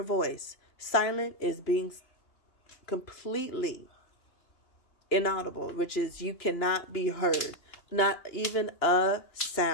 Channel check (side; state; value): right; late; 2.8 ms